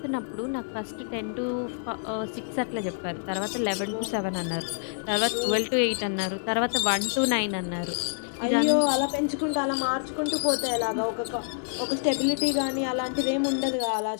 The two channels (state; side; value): silent; right; digital silence